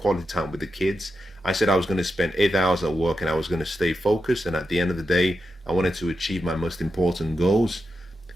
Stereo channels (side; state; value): both; normal; correlation 0.88